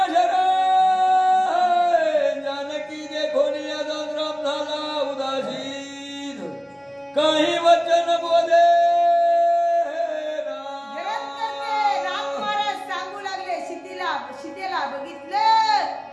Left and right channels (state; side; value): identical; both; correlation 1.00